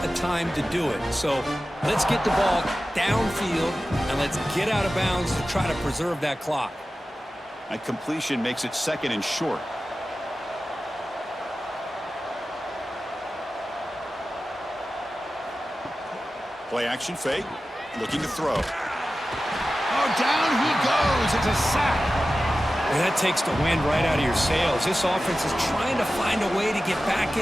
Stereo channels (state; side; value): normal; both; correlation 0.94